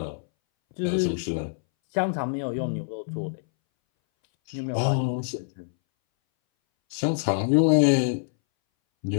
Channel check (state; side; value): silent; right; 61 dB below the other